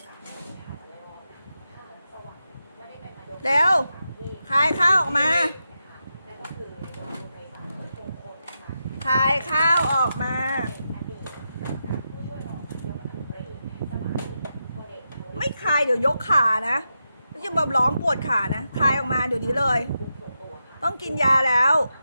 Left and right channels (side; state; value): both; inverted; correlation -0.87